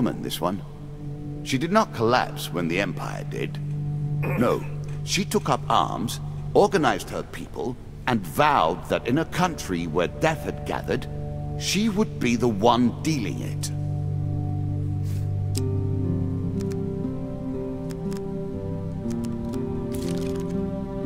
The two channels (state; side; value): identical; both; correlation 1.00